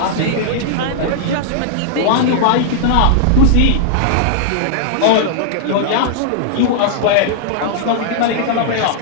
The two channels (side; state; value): both; different; correlation -0.01